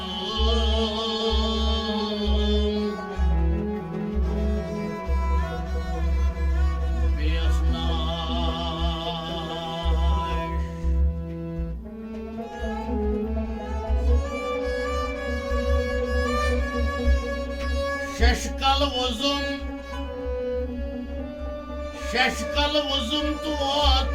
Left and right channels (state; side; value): identical; both; correlation 1.00